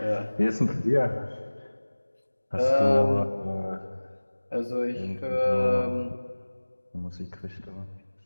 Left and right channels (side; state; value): both; inverted; correlation -1.00